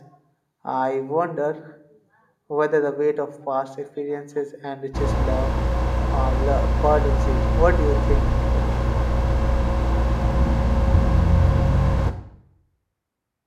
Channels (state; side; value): identical; both; correlation 1.00